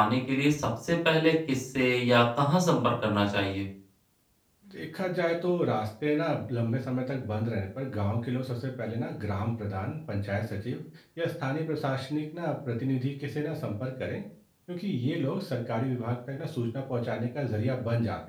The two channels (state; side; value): identical; both; correlation 1.00